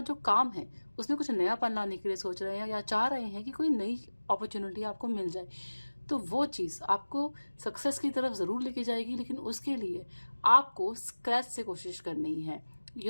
जो काम है उसमें कुछ नयापन लाने के लिए सोच रहे हैं या चाह रहे हैं कि कोई नई अपॉर्चुनिटी आपको मिल जाए। तो वो चीज़ आपको सक्सेस की तरफ ज़रूर लेके जाएगी, लेकिन उसके लिए आपको स्क्रैच से कोशिश करनी है।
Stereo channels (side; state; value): both; inverted; correlation -1.00